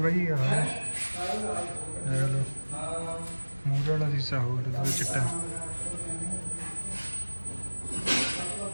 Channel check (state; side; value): inverted; both; correlation -1.00